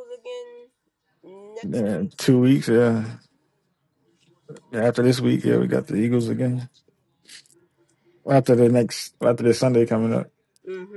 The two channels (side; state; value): both; identical; correlation 1.00